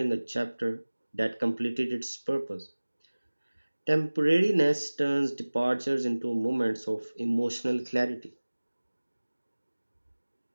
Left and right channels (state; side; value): inverted; both; correlation -1.00